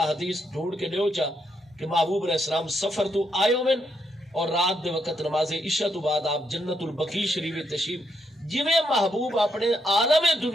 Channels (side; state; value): both; normal; correlation 0.78